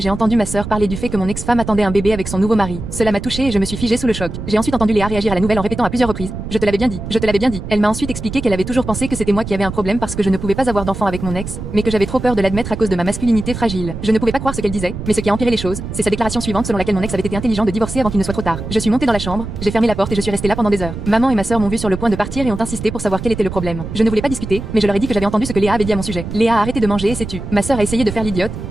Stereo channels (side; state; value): right; noise; rumble, 8 dB below the sound